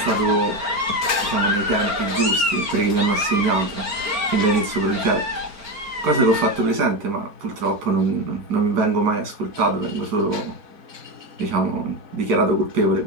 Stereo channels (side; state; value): left; late; 4.0 ms